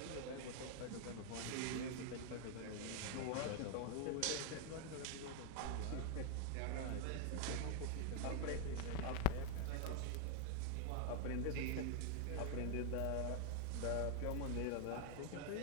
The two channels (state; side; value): different; both; correlation 0.00